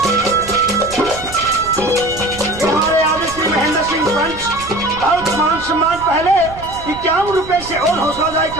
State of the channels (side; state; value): right; noise; rumble, 15 dB below the sound